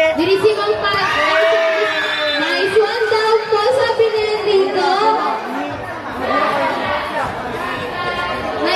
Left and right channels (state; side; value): identical; both; correlation 1.00